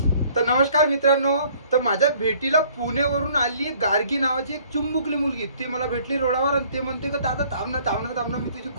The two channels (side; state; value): both; inverted; correlation -0.58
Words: तर नमस्कार मित्रांनो, तर माझ्या भेटीला पुणेवरून आली गार्गी नावाची एक चुंबुकली मुलगी. ती मला भेटली रोडावर आणि ते म्हणते का दादा थांब ना थांब ना थांब ना, मी तुझी